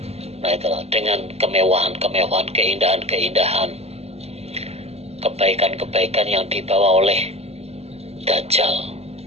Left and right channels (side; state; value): left; late; 0.30 ms